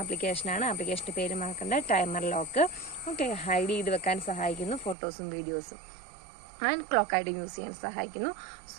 ആപ്ലിക്കേഷനാണ്. ആപ്ലിക്കേഷൻ്റെ പേര് മറക്കണ്ട, ടൈമർ ലോക്ക്. ഓക്കെ, ഹൈഡ് ചെയ്ത് വെക്കാൻ സഹായിക്കുന്നു ഫോട്ടോസും വീഡിയോസും ആൻഡ് ക്ലോക്കായിട്ട് യൂസ് ചെയ്യാൻ സഹായിക്കുന്നു.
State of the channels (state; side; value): drops out; left; at 5.0 s